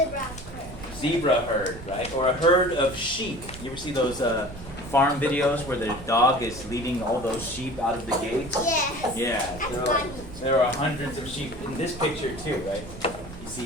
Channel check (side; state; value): right; noise; rumble, 14 dB below the sound